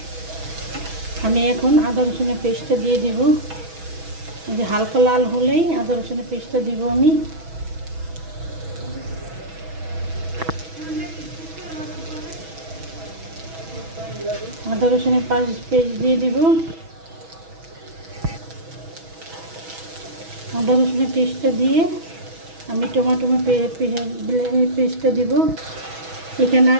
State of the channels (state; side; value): late; left; 6.1 ms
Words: আমি এখন আদা রসুনের পেস্টটা দিয়ে দিব। এই যে হালকা লাল হলেই আদা রসুনের পেস্টটা দিব আমি। আদা রসুনের পেস্ট দিয়ে দিব। আদা রসুনের পেস্টটা দিয়ে আমি টমেটো পেস্টটা দিব। এখানে